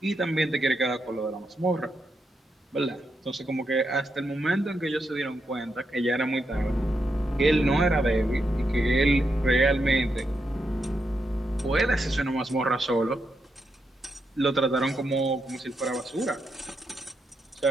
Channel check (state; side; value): normal; both; correlation 0.83